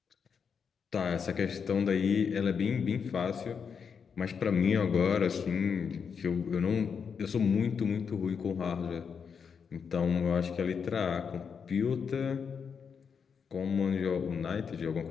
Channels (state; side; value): quieter; right; 6.4 dB